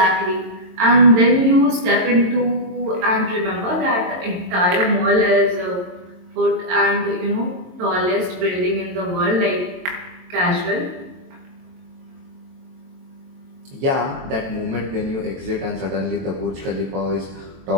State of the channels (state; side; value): late; left; 22 ms